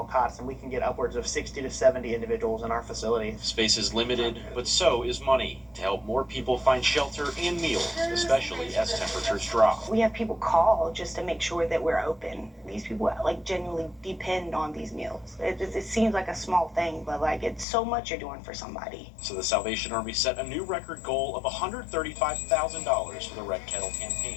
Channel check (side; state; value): right; drops out; at 17.7 s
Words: cots and we can get upwards of 60 to 70 individuals in our facility. Space is limited, but so is money to help more people find shelter and meals, especially as temperatures drop. We have people call just to make sure that we're open. These people genuinely depend on these meals. It seems like a small thing, but it's so much you're doing for somebody. So the Salvation Army set a new record goal of $135,000 for the Red Kettle